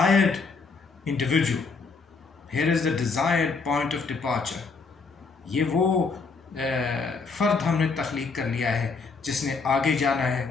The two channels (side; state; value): right; quieter; 4.5 dB